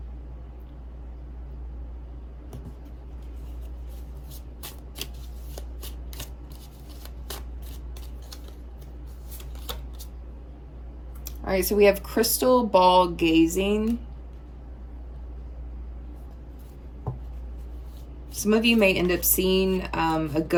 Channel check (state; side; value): identical; both; correlation 1.00